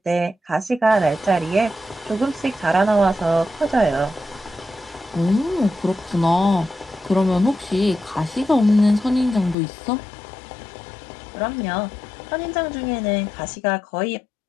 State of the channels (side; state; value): right; drops out; at 9.6 s